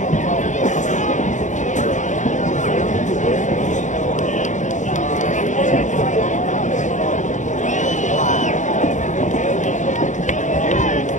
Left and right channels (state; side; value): late; right; 0.36 ms